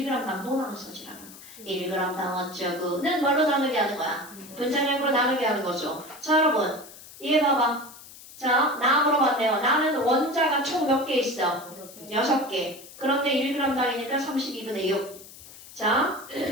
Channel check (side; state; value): left; noise; hiss, 18 dB below the sound